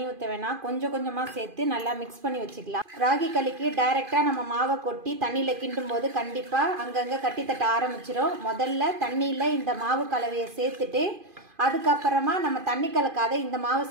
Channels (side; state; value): left; late; 2.5 ms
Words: ஊத்த வேணாம், கொஞ்சமா சேர்த்து நல்லா மிக்ஸ் பண்ணி வச்சுக்கலாம். ராகி களிக்கு டைரக்டா நம்ம மாவை கொட்டி தண்ணியில கிண்டும் போது கண்டிப்பா அங்கங்க கட்டி தட்ட ஆரம்பிச்சிடும். முதல்ல தண்ணியில இந்த மாவு கலவையை சேர்த்துட்டு அதுக்கப்புறமா நம்ம தண்ணி கலக்காத இந்த மாவை